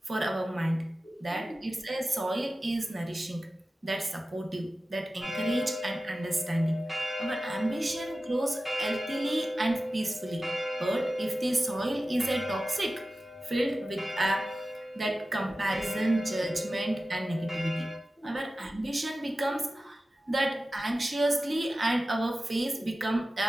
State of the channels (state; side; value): normal; both; correlation 0.95